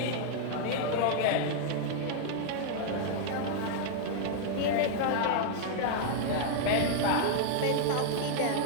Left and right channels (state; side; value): different; both; correlation -0.01